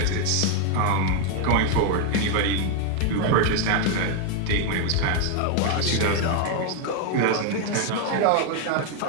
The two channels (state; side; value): different; both; correlation 0.01